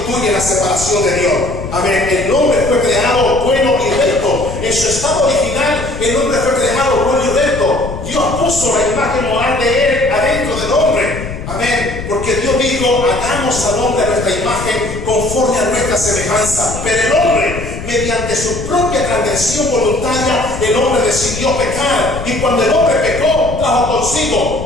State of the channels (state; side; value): noise; left; rumble, 9 dB below the sound